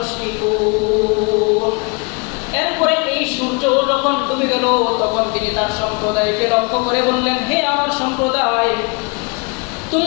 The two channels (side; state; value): right; quieter; 32.2 dB